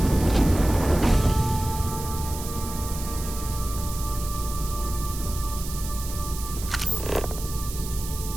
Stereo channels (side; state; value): right; noise; hiss, 11 dB below the sound